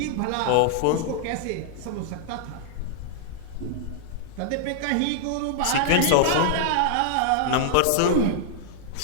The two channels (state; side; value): different; both; correlation -0.01